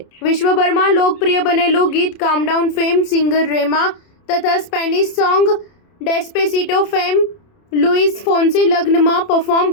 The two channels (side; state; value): right; late; 30 ms